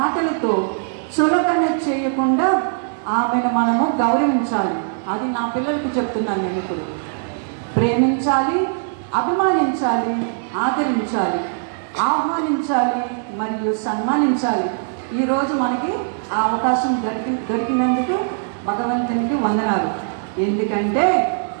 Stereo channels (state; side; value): silent; left; digital silence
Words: చులకన చేయకుండా ఆమెను మనము గౌరవించాలి. అది నా పిల్లలకు చెప్తున్నాను నేను ఇప్పుడు. ప్రేమించాలి, అభిమానించాలి, ఆదరించాలి, ఆహ్వానించాలి మరియు సన్మానించాలి. ఈరోజు మనకి ఆ అవకాశం దొరికినందుకు భగవంతునికి వందనాలు. ఎందుకంటే